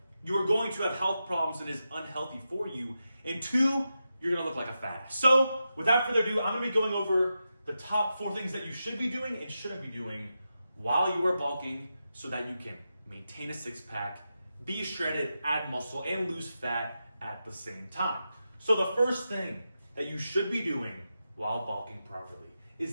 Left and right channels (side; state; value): both; inverted; correlation -0.89